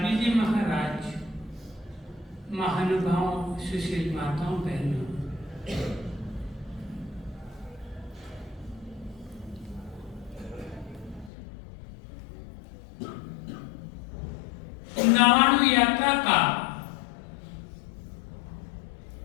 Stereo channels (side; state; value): right; drops out; at 11.3 s